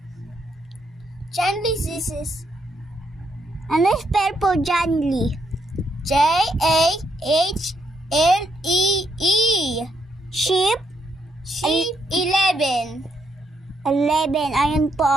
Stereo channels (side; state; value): both; normal; correlation 0.77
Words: Chanley, this is Ano spell po, Janly? J-A-H-L-E-E. Sheep? Sheep 11. 11. Ayun po,